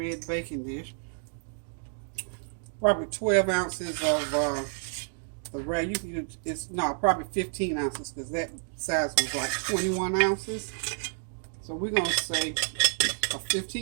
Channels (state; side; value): silent; left; 58 dB below the other